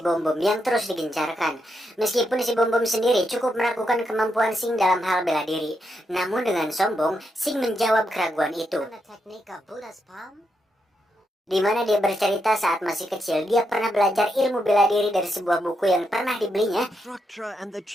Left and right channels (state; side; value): normal; both; correlation 0.82